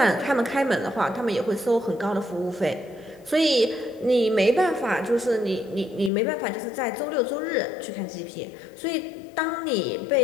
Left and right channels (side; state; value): right; drops out; at 6.1 s